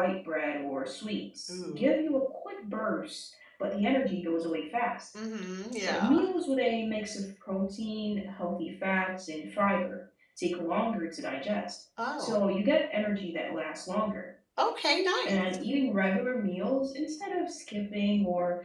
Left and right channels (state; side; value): identical; both; correlation 1.00